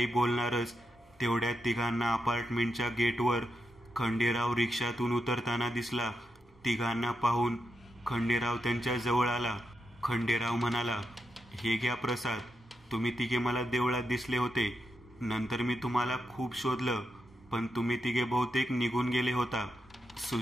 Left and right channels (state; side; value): normal; both; correlation 0.85